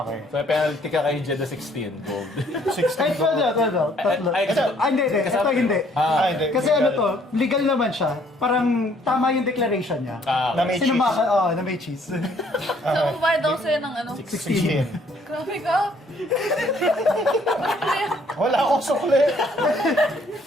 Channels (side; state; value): both; normal; correlation 0.63